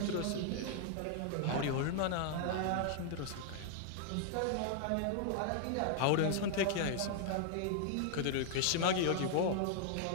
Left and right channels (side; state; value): both; different; correlation -0.01